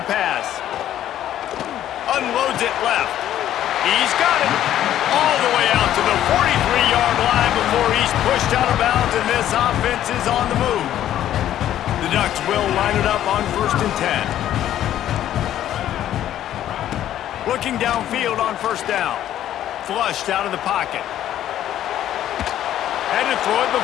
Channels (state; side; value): quieter; right; 11.8 dB